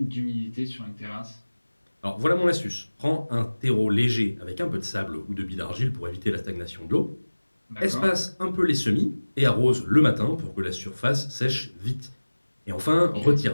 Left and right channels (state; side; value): inverted; both; correlation -1.00